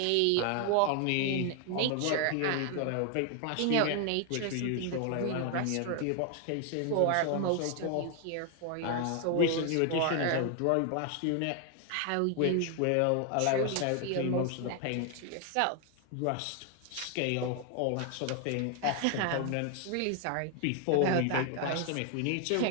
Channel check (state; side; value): different; both; correlation 0.00